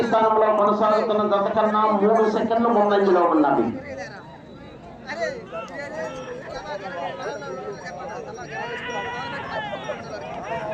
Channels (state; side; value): identical; both; correlation 1.00